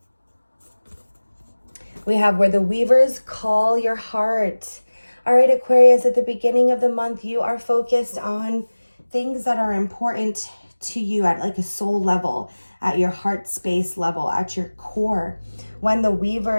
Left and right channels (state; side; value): inverted; both; correlation -1.00